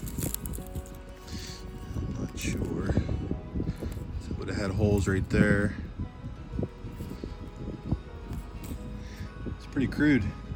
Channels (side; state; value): both; identical; correlation 1.00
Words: not sure. It would have had holes right there. It's pretty crude.